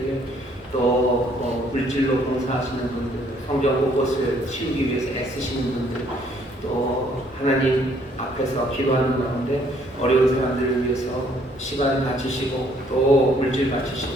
또 물질로 봉사하시는 분들, 성경 곳곳을 치우기 위해서 애쓰시는 분들, 또 하나님 앞에서 기도하는 가운데 어려운 사람들을 위해서 시간 바치시고 또 물질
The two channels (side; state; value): both; normal; correlation 0.64